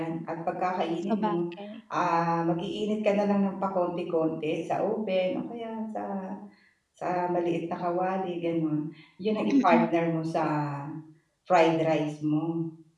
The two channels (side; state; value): both; identical; correlation 1.00